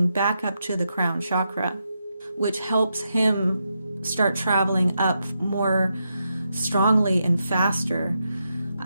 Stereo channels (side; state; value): both; inverted; correlation -0.84